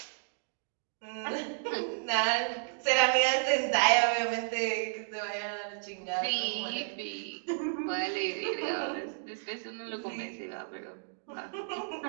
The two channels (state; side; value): silent; left; digital silence